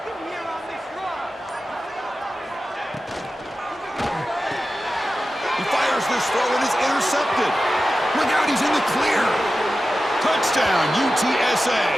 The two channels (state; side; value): normal; both; correlation 0.93